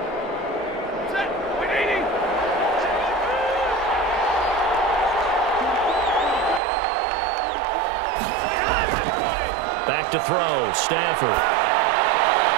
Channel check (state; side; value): drops out; left; at 6.6 s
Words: Back to throw, Stafford.